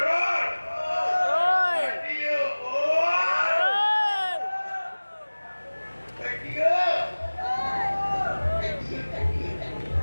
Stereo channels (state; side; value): inverted; both; correlation -1.00